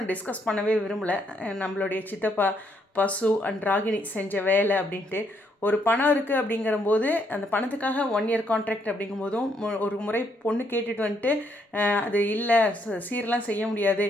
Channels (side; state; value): both; normal; correlation 0.73